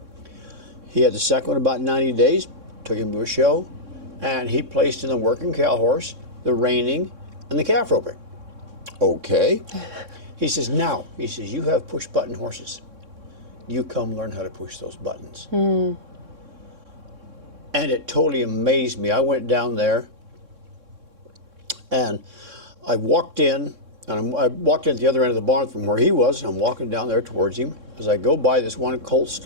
He had the second one about 90 days, took him to a show, and he placed in the working cow horse, the reining, and the calf roping. Okay. He says, you have push button horses. You come learn how to push those buttons. And it totally amazed me. I went down there, and I walked in, and I walked in at the other end of the barn from where he was. I'm walking down there towards him. As I go by this one colt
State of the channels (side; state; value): left; late; 3.6 ms